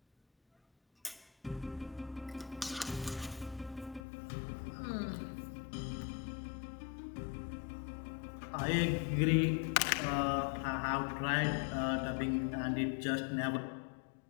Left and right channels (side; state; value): right; drops out; at 4.0 s